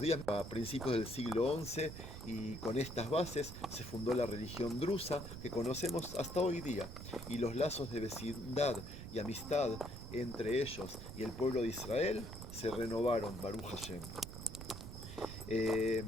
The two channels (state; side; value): noise; right; rumble, 10 dB below the sound